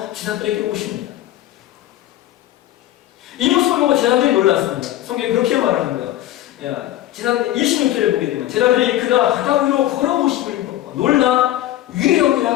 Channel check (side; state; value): right; quieter; 14.0 dB